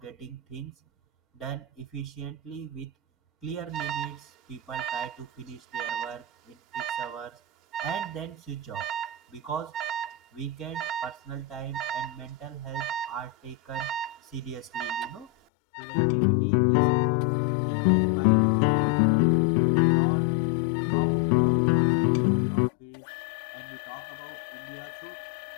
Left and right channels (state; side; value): drops out; right; at 15.3 s